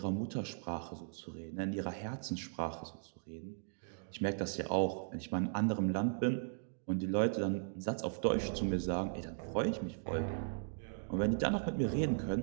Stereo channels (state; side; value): silent; left; digital silence